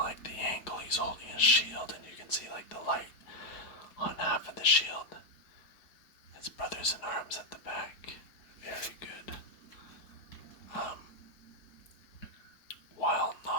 the angle he's holding his shield, and you can see like the light on half of the shield. His brothers in arms at the back. Very good. While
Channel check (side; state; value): right; late; 4.7 ms